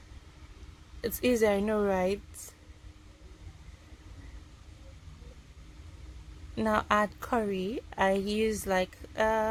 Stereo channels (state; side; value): identical; both; correlation 1.00